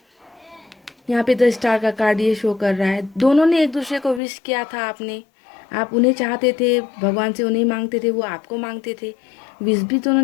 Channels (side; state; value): right; drops out; at 4.2 s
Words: यहाँ पे 10 स्टार का कार्ड ये शो कर रहा है, दोनों ने एक दूसरे को विश किया था। आप उन्हें चाहते थे, भगवान से उन्हें मांगते थे, वो आपको मांगते थे, विश भी दोनों